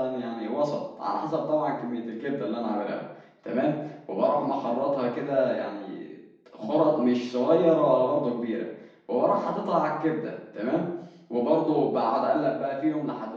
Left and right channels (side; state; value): both; identical; correlation 1.00